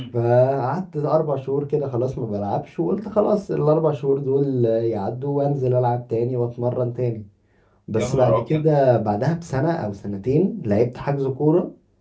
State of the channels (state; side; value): identical; both; correlation 1.00